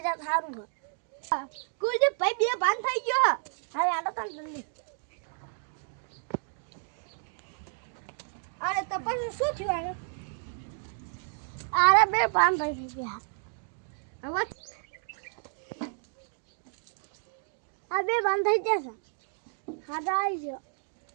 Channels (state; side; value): silent; left; digital silence